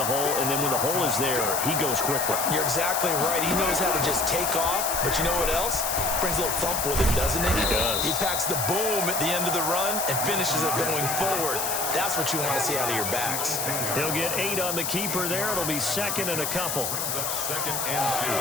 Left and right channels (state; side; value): noise; left; hiss, 1 dB below the sound